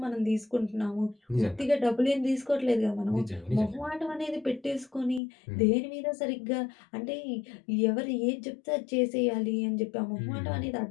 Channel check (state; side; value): drops out; right; at 5.2 s